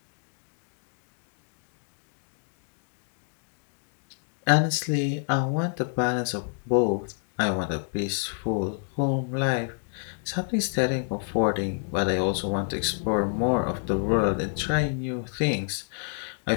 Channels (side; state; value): right; silent; 59 dB below the other